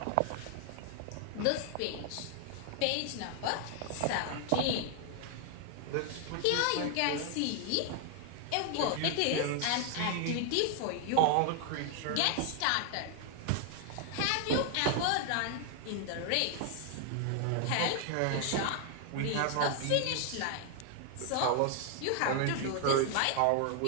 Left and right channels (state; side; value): different; both; correlation 0.00